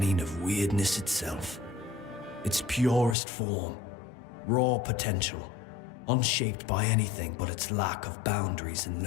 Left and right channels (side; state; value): right; drops out; at 3.2 s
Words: of weirdness itself. Its purest form, raw potential, unshaped by anything but its lack of boundaries and